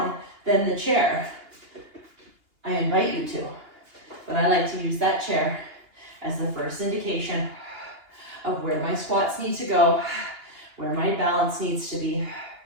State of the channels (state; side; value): late; left; 2.9 ms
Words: than the chair, I invite you to, but I like to use that chair as the first indication of where my squats need to go, where my balance needs to be.